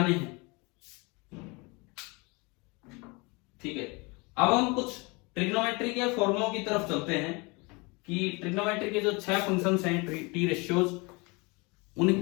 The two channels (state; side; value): quieter; right; 27.6 dB